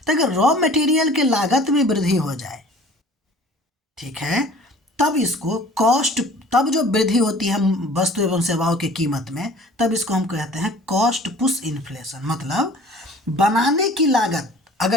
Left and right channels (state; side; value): normal; both; correlation 0.48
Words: तो अगर रॉ मटेरियल के लागत में वृद्धि हो जाए, ठीक है, तब इसको कॉस्ट, तब जो वृद्धि होती है वस्तु एवं सेवाओं की कीमत में, तब इसको हम कहते हैं कॉस्ट पुश इन्फ्लेशन। मतलब बनाने की लागत